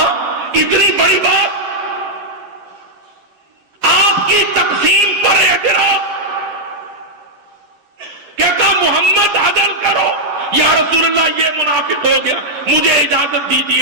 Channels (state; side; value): late; left; 9.7 ms